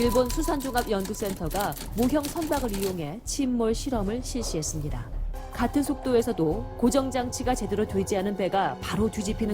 수산종합연구센터가 모형 선박을 이용해 침몰 실험을 실시했습니다. 같은 속도에서도 고정장치가 제대로 되지 않은 배가 바로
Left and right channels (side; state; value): both; identical; correlation 1.00